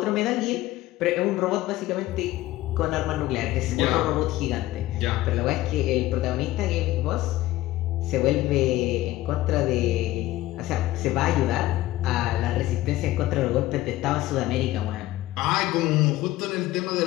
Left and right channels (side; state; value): right; quieter; 16.3 dB